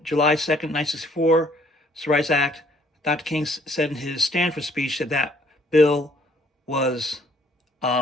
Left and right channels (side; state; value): both; normal; correlation 0.63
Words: July 2nd, 1964, Civil Rights Act, Dr. King said in his Stanford speech that that bill was